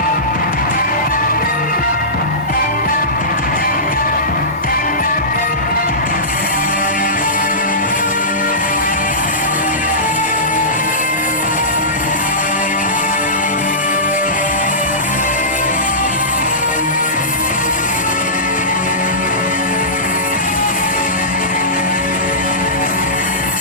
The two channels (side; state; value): both; normal; correlation -0.19